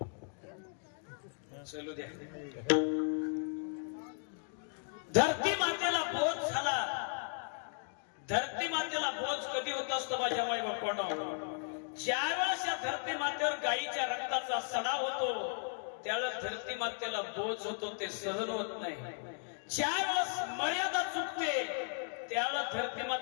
चलू द्या. धरती मातेला बोध झाला. धरती मातेला बोझ कधी होत असतो माझ्या माई बापानं? ज्यावेळेस या धरती मातेवर गायीच्या रक्ताचा सडा होतो त्यावेळेस धरती मातेला बोझ होतो, ते सहन होत नाही. ज्यावेळेस मर्यादा चुकते त्यावेळेस धरती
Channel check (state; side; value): silent; right; 54 dB below the other